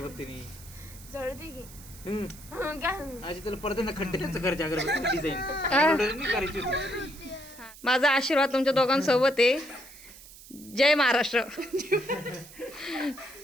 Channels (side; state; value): right; noise; hiss, 19 dB below the sound